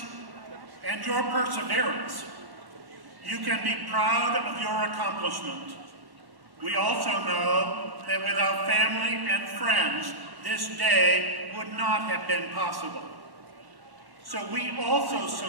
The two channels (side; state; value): left; late; 1.1 ms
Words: and your perseverance. You can be proud of your accomplishment. We also know that without family and friends, this day would not have been possible. So we also